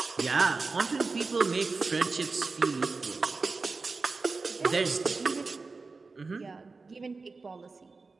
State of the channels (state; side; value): quieter; left; 4.1 dB